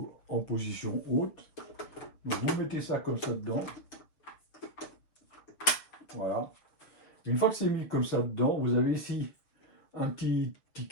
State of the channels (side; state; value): right; late; 7.0 ms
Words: en position haute. Donc vous mettez ça comme ça dedans. Voilà. Une fois que c'est mis comme ça dedans, vous avez ici un petit